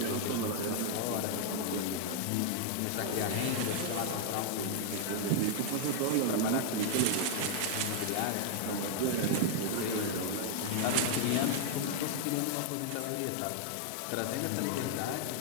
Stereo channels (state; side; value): different; both; correlation 0.00